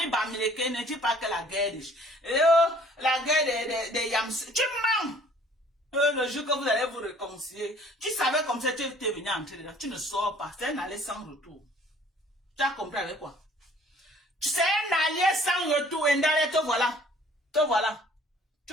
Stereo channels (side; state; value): both; normal; correlation 0.55